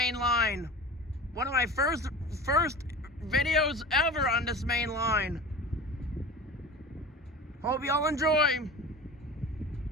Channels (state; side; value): normal; both; correlation 0.35